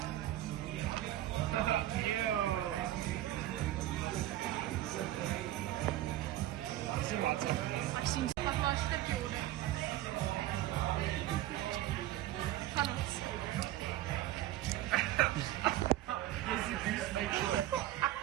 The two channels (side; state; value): left; quieter; 14.2 dB